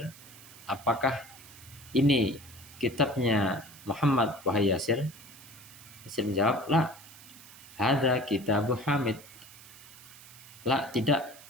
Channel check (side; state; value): right; noise; hiss, 19 dB below the sound